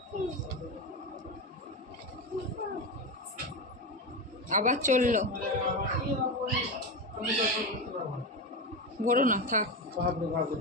আবার চললো, ভরো না থাক।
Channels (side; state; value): both; normal; correlation 0.17